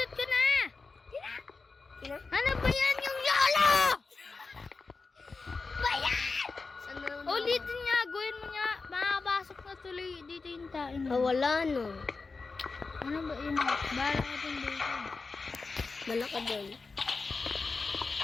ko na. Kina? Ano ba yan yung yolo? Bayan! Saan na? Ulitin nga, gawin mo nga. Makakapasok na tuloy dito yung tayo. Wala no. Ano ba yun? Bala ka dun dito. Malaka doon.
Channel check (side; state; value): right; quieter; 4.2 dB